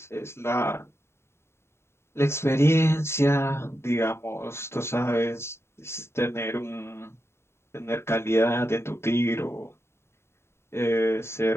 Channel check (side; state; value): right; late; 0.12 ms